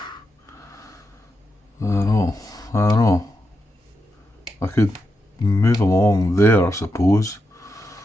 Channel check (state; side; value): normal; both; correlation 0.85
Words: I don't know. I could move them along there, I suppose.